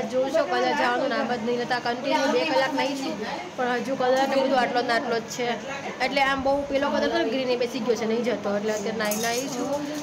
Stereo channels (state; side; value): identical; both; correlation 1.00